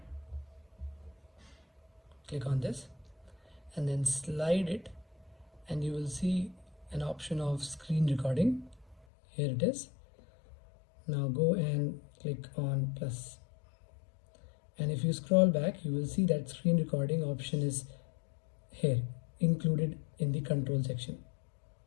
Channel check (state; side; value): drops out; right; at 9.1 s